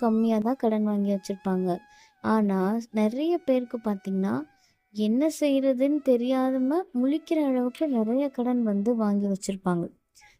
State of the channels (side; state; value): both; identical; correlation 1.00